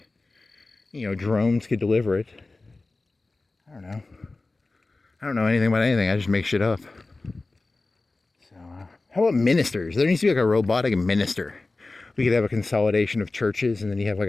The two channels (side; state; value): right; quieter; 3.3 dB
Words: You know, drones could deliver it. I don't know anything about anything. I just make shit up. So, how about ministers? There needs to be like a robotic minister. We could have a consolidation of churches, and then you have